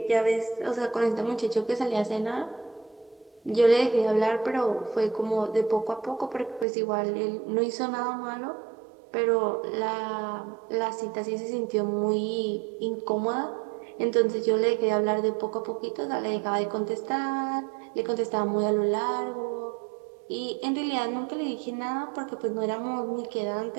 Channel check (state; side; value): drops out; left; at 6.7 s